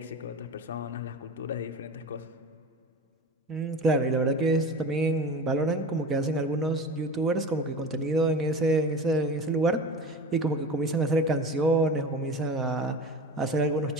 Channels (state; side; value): normal; both; correlation 0.33